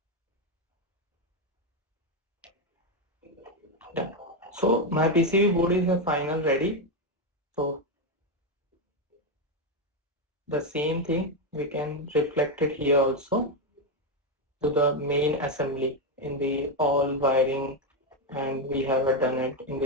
Done. So my PCB board is a final ready. So the same thing we can reflect it here also to the main assembly in the all wiring, and we have done it in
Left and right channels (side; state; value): both; normal; correlation 0.07